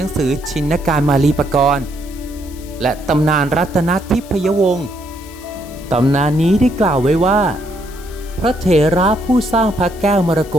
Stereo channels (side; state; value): left; noise; hiss, 21 dB below the sound